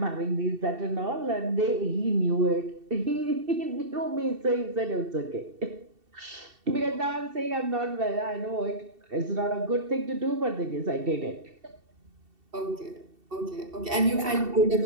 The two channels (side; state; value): left; late; 2.7 ms